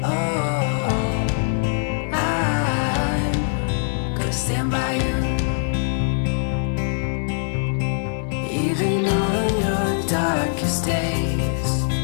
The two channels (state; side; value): silent; right; digital silence